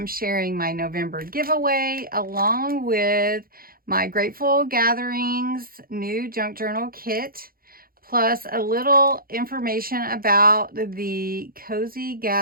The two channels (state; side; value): late; left; 0.42 ms